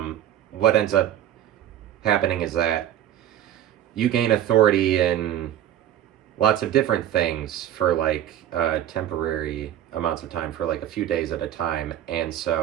what ends up happening is that you gain authority in lots of different things for like temporary amounts of time, for like a few days at a time. And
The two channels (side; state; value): left; quieter; 11.6 dB